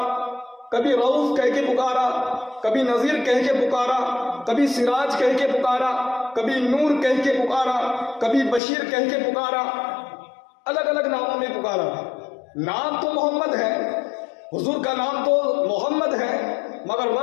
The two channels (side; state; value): right; drops out; at 8.6 s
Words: کبھی رؤوف کہہ کے پکارا، کبھی نذیر کہہ کے پکارا، کبھی سراج کہہ کے پکارا، کبھی نور کہہ کے پکارا، کبھی بشیر کہہ کے پکارا، الگ الگ ناموں میں پکارا. نام تو محمد ہے، حضور کا نام تو محمد ہے، مگر